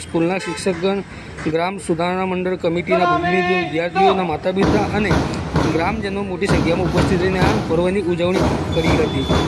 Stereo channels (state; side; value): identical; both; correlation 1.00